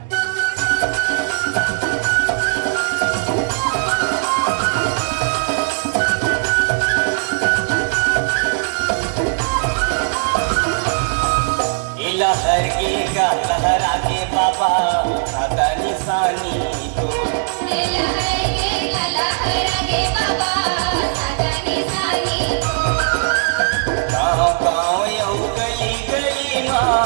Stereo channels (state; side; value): silent; left; digital silence